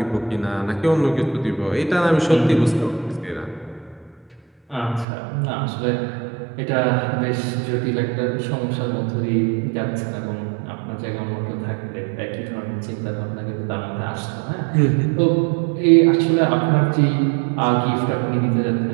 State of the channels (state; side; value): drops out; left; at 5.1 s